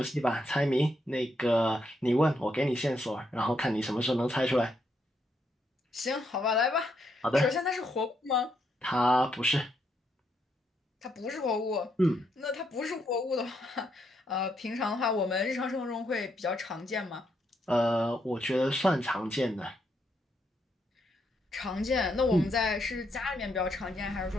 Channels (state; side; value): normal; both; correlation 0.77